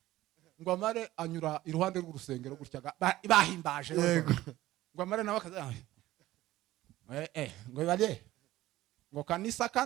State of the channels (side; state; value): left; quieter; 15.9 dB